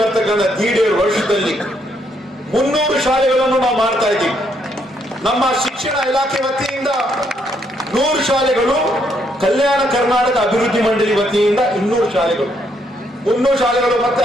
ಬರ್ತಕ್ಕಂಥ 1.5 ವರ್ಷದಲ್ಲಿ 300 ಶಾಲೆಗಳನ್ನು ನಾವು ಮಾಡ್ತಾ ಇದ್ದೀವಿ. ನಮ್ಮ ಶಿಕ್ಷಣ ಇಲಾಖೆ ವತಿಯಿಂದ 100 ಶಾಲೆಗಳು, ಕಲ್ಯಾಣ ಕರ್ನಾಟಕ ಅಭಿವೃದ್ಧಿ ಮಂಡಳಿ ವತಿಯಿಂದ 200 ಶಾಲೆಗಳು, 300 ಶಾಲೆಗಳು. ಮತ್ತೆ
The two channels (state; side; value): normal; both; correlation 0.73